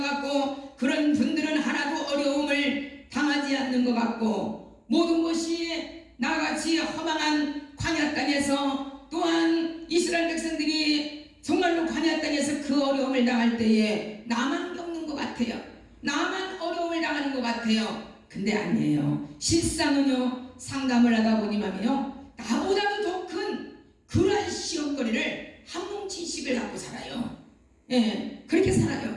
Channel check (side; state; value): both; identical; correlation 1.00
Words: 같고, 그런 분들은 하나도 어려움을 당하지 않는 것 같고, 모든 것이 나같이 허망한 광야 땅에서, 또한 이스라엘 백성들이 정말로 광야 땅에서 그 어려움을 당할 때에 나만 겪는 것 같아요. 나만 어려움을 당하는 것 같아요. 근데 아니에요. 실상은요, 상담을 하다 보니만요, 나보다도 더 큰 그러한 시험거리를 한 뭉치씩을 갖고 살아요. 예, 그렇게